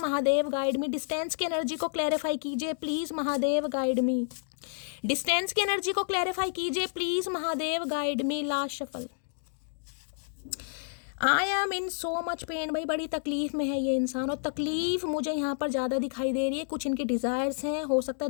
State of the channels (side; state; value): right; silent; digital silence